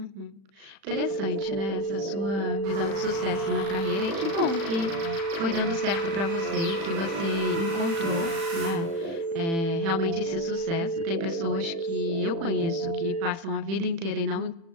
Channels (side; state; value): left; late; 36 ms